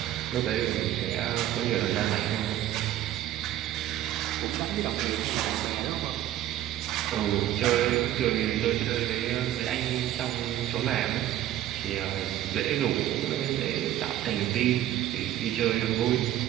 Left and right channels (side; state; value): left; quieter; 12.9 dB